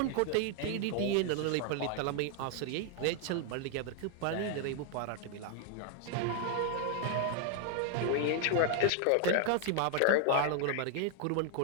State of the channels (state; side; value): different; both; correlation 0.00